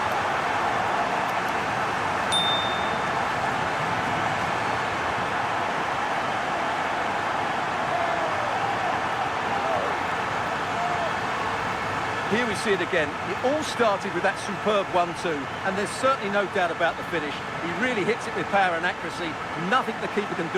Here we see it again. It all started with that superb 1-2, and there's certainly no doubt about the finish. He really hits it with power and accuracy. Nothing the keeper can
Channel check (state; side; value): identical; both; correlation 1.00